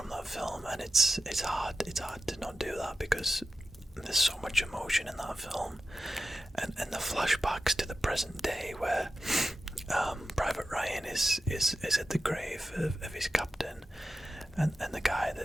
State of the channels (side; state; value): both; normal; correlation 0.92